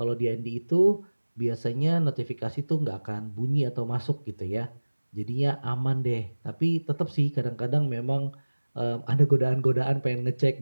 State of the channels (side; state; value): both; inverted; correlation -1.00